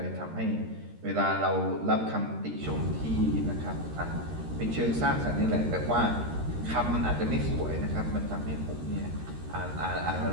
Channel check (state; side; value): late; left; 13 ms